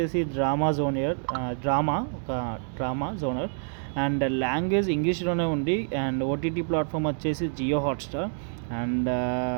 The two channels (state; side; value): silent; left; digital silence